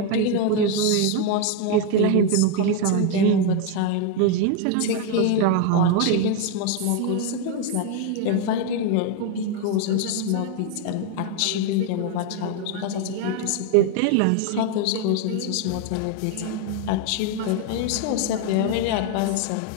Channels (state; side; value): different; both; correlation 0.01